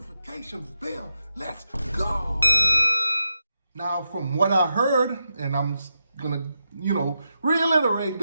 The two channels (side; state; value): both; inverted; correlation -0.87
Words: bell. Let's go. Now, from what I heard, and I'm gonna, reiterate